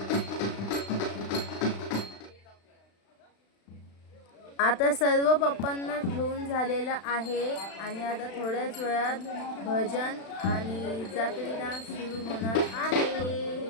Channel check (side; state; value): right; late; 36 ms